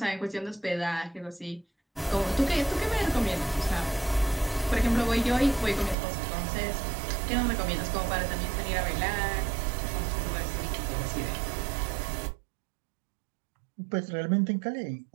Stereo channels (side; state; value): left; drops out; at 6.0 s